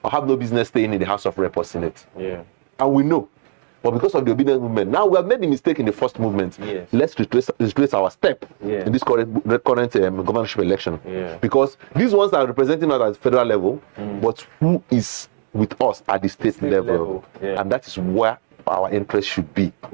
or have no business staying in the House of Rep or Senate. Yeah. And we know. But because of the obedience movement, now we have made the mistake in the first movement. Yes. Let's retrace our step in this current governorship election. Yeah. Because these ones are representing us at federal level, but who is with us at the state level? Yeah. And that is where our interest should be.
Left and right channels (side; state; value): left; silent; 63 dB below the other